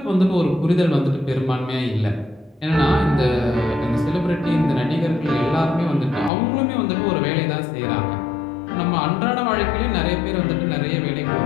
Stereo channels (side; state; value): right; drops out; at 6.3 s